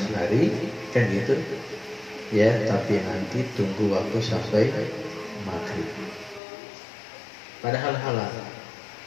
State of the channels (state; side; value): drops out; right; at 6.4 s